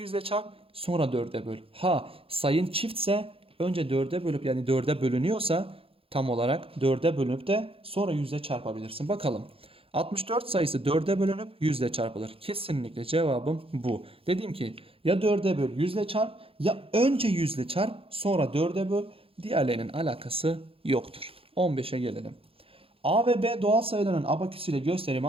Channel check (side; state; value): left; late; 0.27 ms